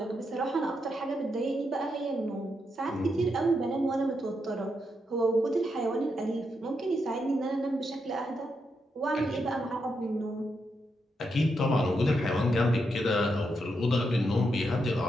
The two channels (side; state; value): both; normal; correlation 0.82